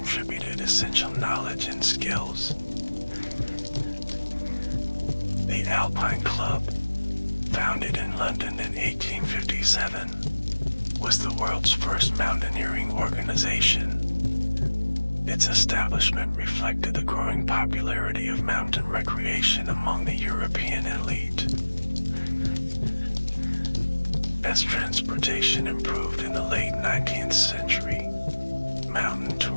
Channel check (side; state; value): both; inverted; correlation -1.00